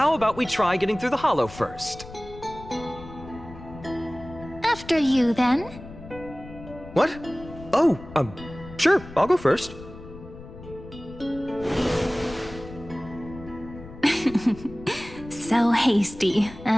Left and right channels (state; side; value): noise; left; rumble, 16 dB below the sound